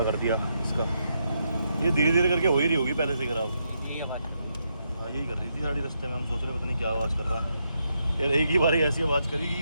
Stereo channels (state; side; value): inverted; both; correlation -0.80